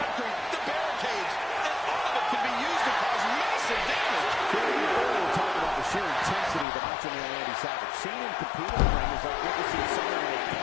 the barricades, and all of it can be used to cause massive damage. Earlier talking about the sheer intensity of the Macho Man Randy Savage. Seeing him compete in the ring is like witnessing someone in a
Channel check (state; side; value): drops out; right; at 6.7 s